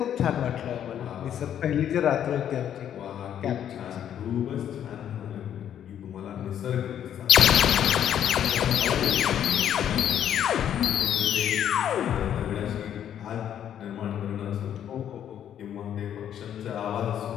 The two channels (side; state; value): right; quieter; 9.9 dB